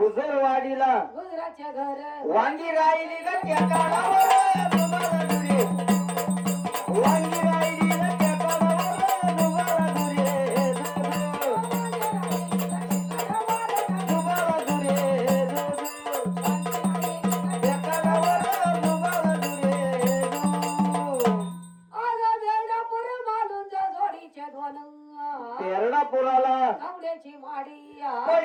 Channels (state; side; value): identical; both; correlation 1.00